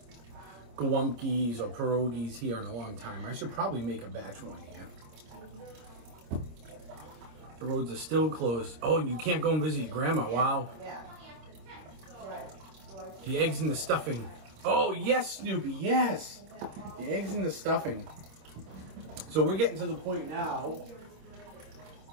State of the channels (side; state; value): left; late; 26 ms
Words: gołąbkis or pierogies here in a long time. I should probably make a batch one here. The roads are still closed. Oh, you can't go and visit your grandma. Wow. Yeah. Right. The eggs and the stuffing. Oh, yes, Snoopy, yes. The eggs and the stuffing. So we're getting to the point now.